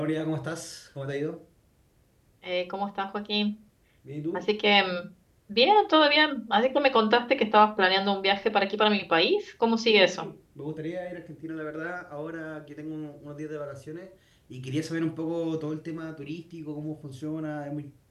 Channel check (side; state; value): both; identical; correlation 1.00